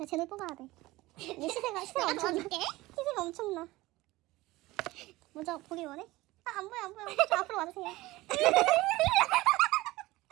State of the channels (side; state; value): left; quieter; 19.2 dB